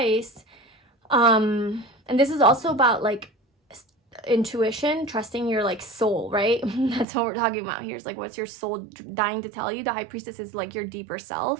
and this is also about like intuition, trusting your like soul, right? That's what we're talking about here. Is like, what's your soul dying to tell you? The high priestess is like your deeper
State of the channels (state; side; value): drops out; left; at 7.1 s